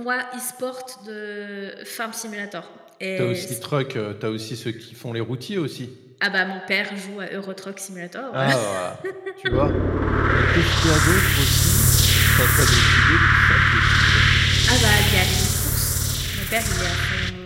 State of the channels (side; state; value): both; identical; correlation 1.00